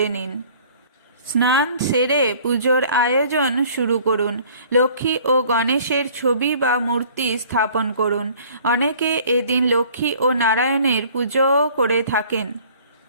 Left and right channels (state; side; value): inverted; both; correlation -0.52